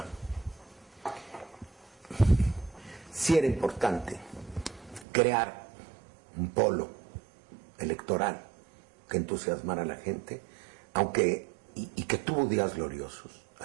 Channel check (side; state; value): left; drops out; at 5.1 s